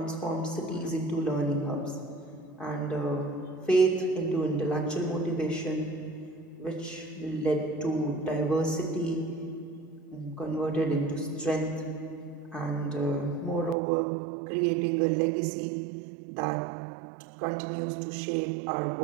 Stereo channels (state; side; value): drops out; left; at 13.8 s